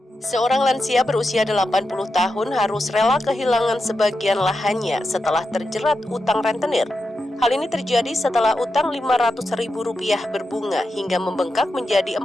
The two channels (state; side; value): normal; both; correlation 0.88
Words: Seorang lansia berusia 80 tahun harus rela kehilangan sebagian lahannya setelah terjerat utang rentenir. Hal ini terjadi setelah utang Rp500.000 berbunga hingga membengkak menjadi